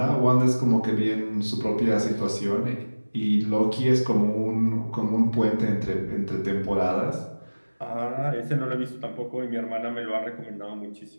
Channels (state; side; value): inverted; both; correlation -1.00